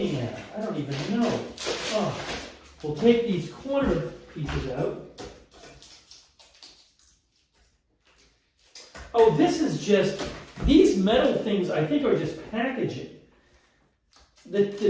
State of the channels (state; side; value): identical; both; correlation 1.00